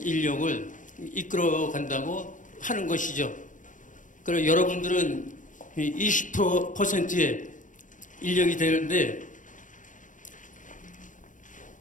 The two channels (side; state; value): right; late; 0.37 ms